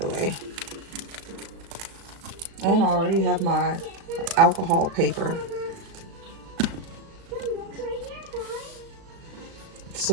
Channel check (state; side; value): late; left; 36 ms